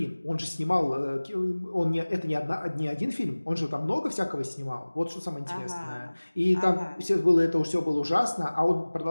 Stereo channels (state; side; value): inverted; both; correlation -1.00